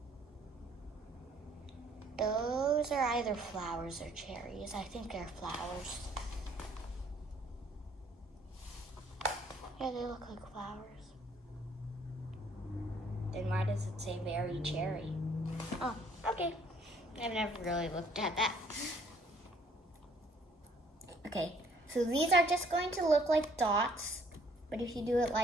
Those are either flowers or cherries. I think they're flowers. Yeah, they look like flowers. Then why does it say very cherry? Oh, okay. I've never really looked at that. Okay, so these are just going to look like dots, but if you do it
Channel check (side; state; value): both; normal; correlation 0.62